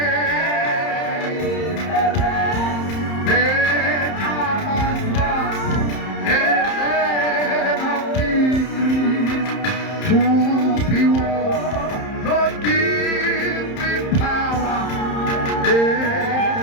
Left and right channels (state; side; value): late; right; 30 ms